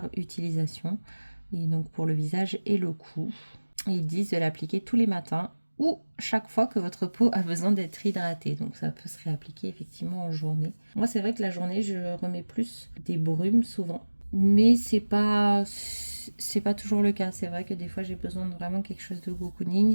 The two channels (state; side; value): inverted; both; correlation -1.00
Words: utilisation, et donc pour le visage et le cou. Ils disent de l'appliquer tous les matins ou chaque fois que votre peau a besoin d'être hydratée. Donc ça peut se réappliquer effectivement en journée. Moi, c'est vrai que la journée, je remets plus des brumes souvent. Mais c'est pas toujours le cas. C'est vrai que des fois j'ai besoin de vraiment quelque chose de